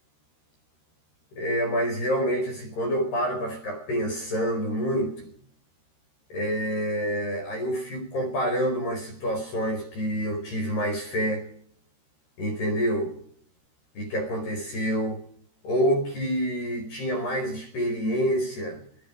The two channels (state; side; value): late; right; 13 ms